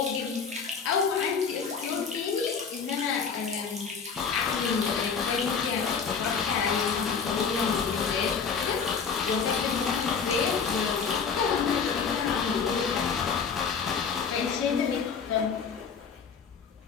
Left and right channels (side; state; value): right; quieter; 6.0 dB